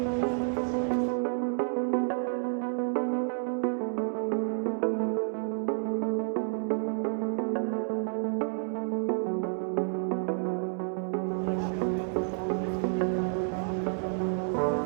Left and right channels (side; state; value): left; silent; digital silence